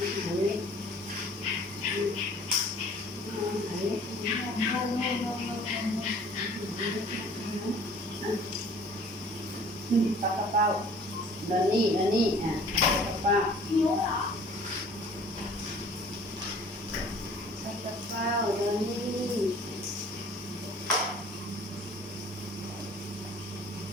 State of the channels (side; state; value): both; normal; correlation 0.51